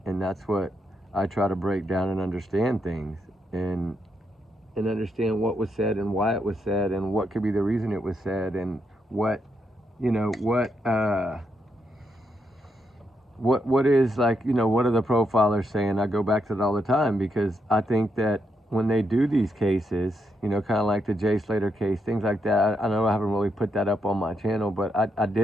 And that's what I try to break down and understand things, and understand what was said and why it was said and what could be the reason it was said, and what, you know, what is, like, you know, what are the profilers saying? I go back to that all the time, because I think that when they do these cases, you know, kind of like the Jay Slater case, things like that, I know I haven't really put that up on my channel, but I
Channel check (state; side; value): normal; both; correlation 0.80